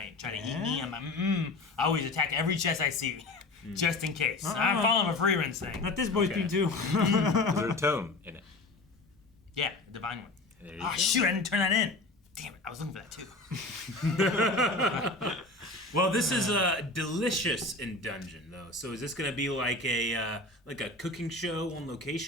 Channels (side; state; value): right; quieter; 3.0 dB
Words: trying to eat me. I'm like, I always attack every chest I see, just in case. I'm following a free run thing. Let this boy Okay. be too. Was there a tome in it? Yeah, a divine one. There you Oh go. shoot, I didn't turn that in. Damn it, I was looking for that too. Well, this is Delicious in Dungeon, though. So is this going to be like a cooking show on